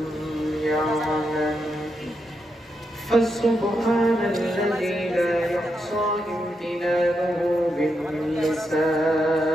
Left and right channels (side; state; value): both; normal; correlation 0.83